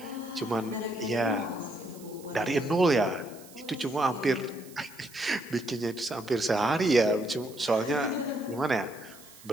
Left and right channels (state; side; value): noise; right; hiss, 21 dB below the sound